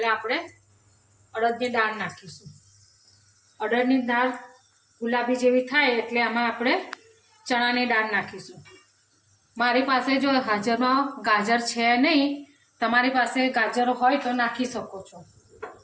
આપણે અડદની દાળ નાખીશું. અડદની દાળ ગુલાબી જેવી થાય એટલે આમાં આપણે ચણાની દાળ નાખીશું. મારી પાસે જો હાજરમાં ગાજર છે નહીં, તમારી પાસે ગાજર હોય તો નાખી શકો છો.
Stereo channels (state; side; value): identical; both; correlation 1.00